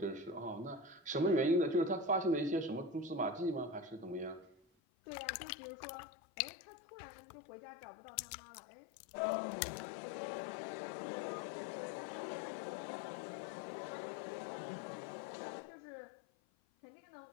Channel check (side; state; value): right; drops out; at 4.7 s